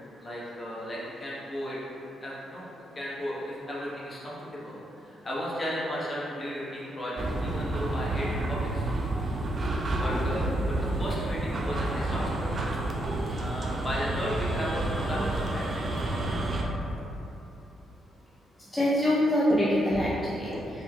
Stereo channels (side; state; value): both; normal; correlation 0.79